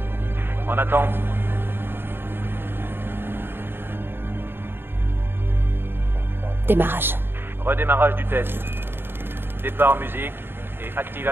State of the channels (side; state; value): left; late; 0.10 ms